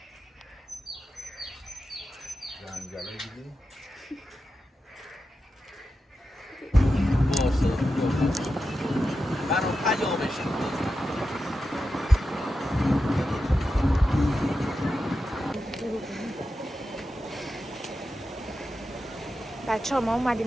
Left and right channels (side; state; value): both; normal; correlation 0.90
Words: جنگله دیدی؟ باشه برام پیامش بچه ها ما